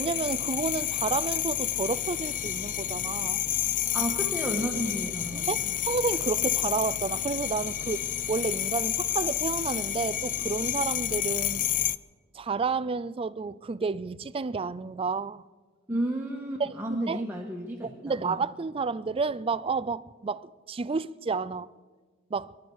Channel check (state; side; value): normal; both; correlation 0.20